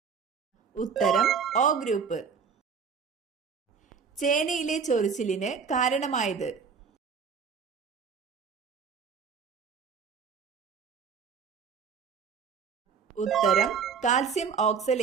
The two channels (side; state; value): left; quieter; 6.0 dB